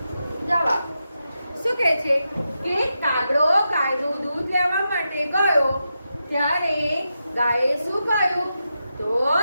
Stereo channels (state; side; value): inverted; both; correlation -0.87